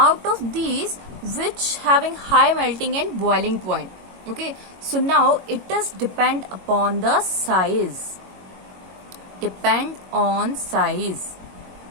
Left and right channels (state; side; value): late; left; 22 ms